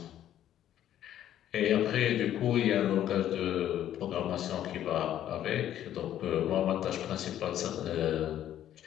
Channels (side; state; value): right; quieter; 11.5 dB